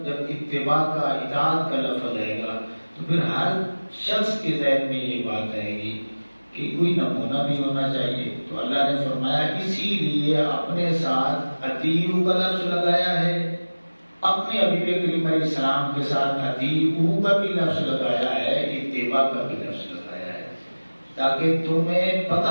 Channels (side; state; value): both; inverted; correlation -1.00